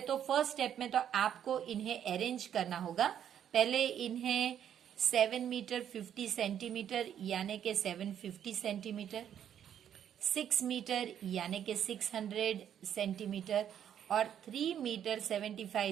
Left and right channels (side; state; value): left; quieter; 9.6 dB